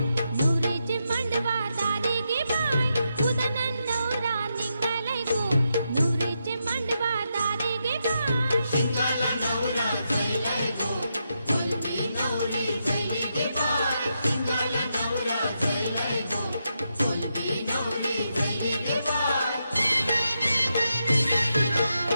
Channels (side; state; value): both; inverted; correlation -0.84